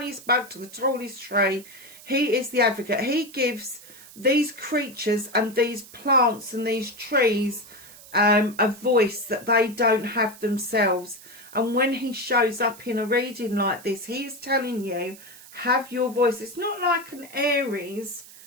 bug to the tallest tree. He is the advocate. He gives these creatures and these plants and these trees a voice that they don't have themselves. And when he shows up in a reading like this, he is telling you, have your voice. It's not like an Aries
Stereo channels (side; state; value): right; noise; hiss, 19 dB below the sound